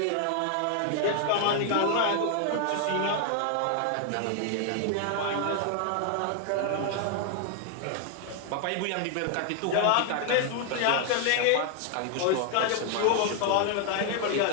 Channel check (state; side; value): different; both; correlation 0.00